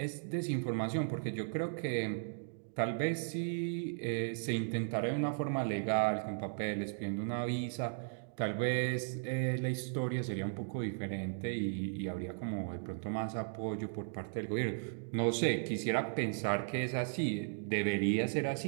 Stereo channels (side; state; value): left; silent; digital silence